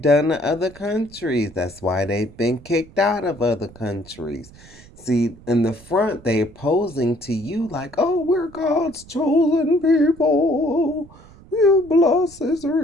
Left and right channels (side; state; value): right; noise; rumble, 22 dB below the sound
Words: done to other countries. That's why they've been kicked out of other countries. See, in the front, they're posing to you like, oh, we're God's chosen people. You bless